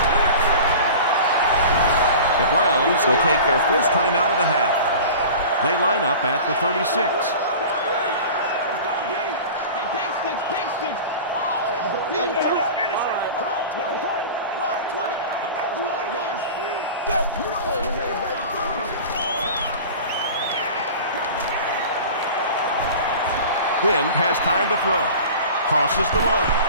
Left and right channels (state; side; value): inverted; both; correlation -0.37